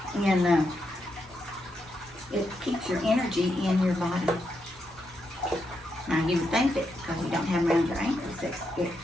And it keeps your energy in your body. Now you would think that because you don't have them around your ankles that it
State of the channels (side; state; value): both; normal; correlation 0.82